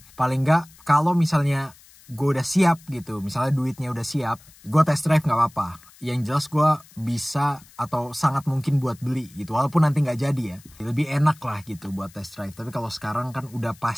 paling nggak kalau misalnya gue udah siap gitu, misalnya duitnya udah siap, gue test drive nggak apa-apa. Yang jelas gue bisa atau sangat mungkin buat beli gitu, walaupun nanti nggak jadi ya, lebih enak lah gitu buat test drive. Tapi kalau sekarang kan udah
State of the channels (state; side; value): noise; left; hiss, 25 dB below the sound